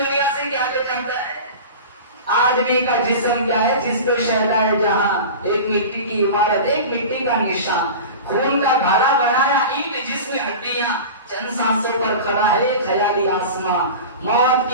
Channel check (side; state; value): both; inverted; correlation -0.32